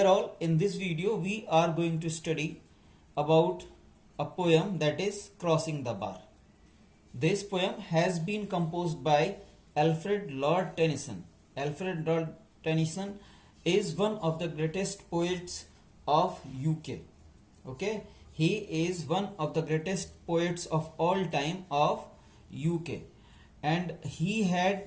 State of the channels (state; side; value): identical; both; correlation 1.00